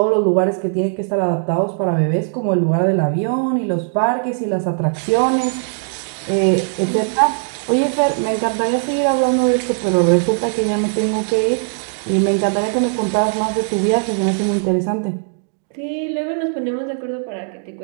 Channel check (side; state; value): left; silent; digital silence